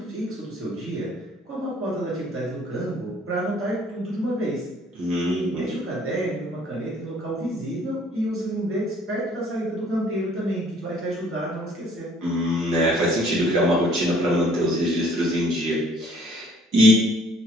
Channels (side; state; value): both; normal; correlation 0.58